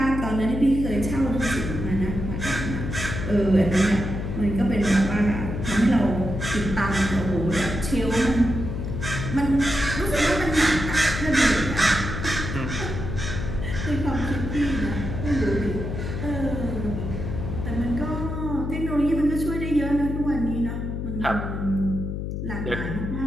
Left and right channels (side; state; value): left; noise; hum, 4 dB below the sound